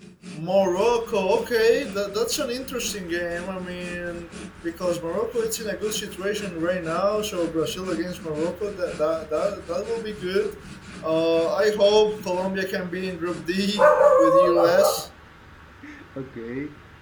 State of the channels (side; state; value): both; identical; correlation 1.00